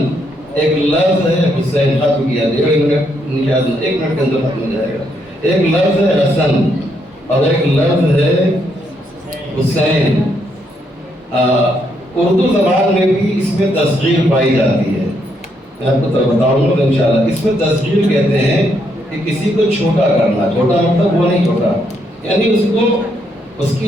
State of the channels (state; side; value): normal; both; correlation 0.76